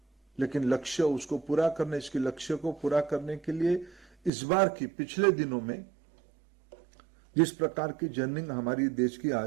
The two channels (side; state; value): left; drops out; at 4.3 s